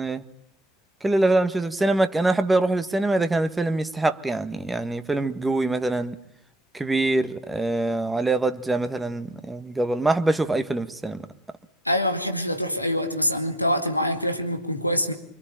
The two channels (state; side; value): normal; both; correlation 0.53